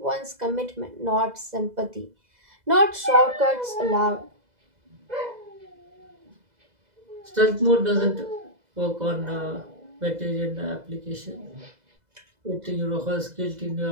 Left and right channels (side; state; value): left; late; 2.0 ms